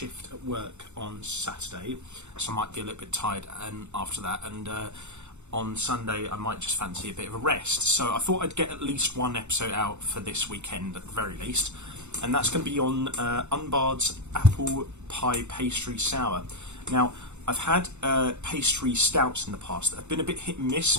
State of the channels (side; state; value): left; late; 0.83 ms